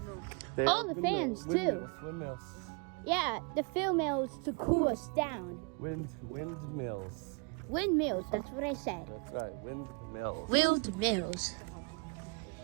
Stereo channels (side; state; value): left; quieter; 33.5 dB